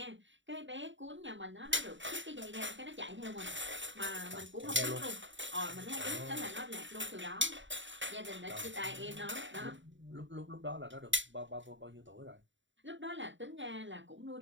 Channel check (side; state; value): left; late; 0.54 ms